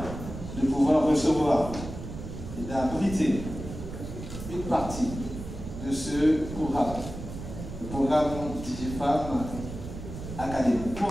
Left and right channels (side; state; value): right; noise; rumble, 9 dB below the sound